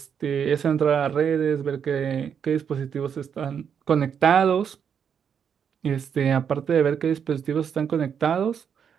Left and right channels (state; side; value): quieter; left; 7.6 dB